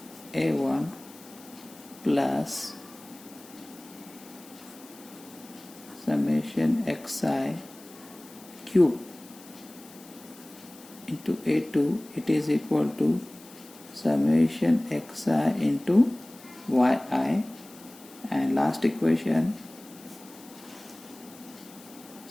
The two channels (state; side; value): noise; left; hiss, 21 dB below the sound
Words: a1 plus summation xi cube into A2, it is equal to summation xi into yi, and last equation